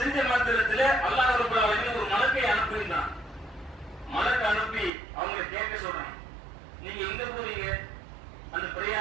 மாத்திரத்தில் அல்லாஹ் ரப்பல் ஆலமீன் ஒரு மலக்கை அனுப்புகிறான். மலக்கு அனுப்பி அவங்க கேட்க சொல்றான், நீங்க எங்க போறீங்க? அந்த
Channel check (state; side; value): drops out; left; at 4.9 s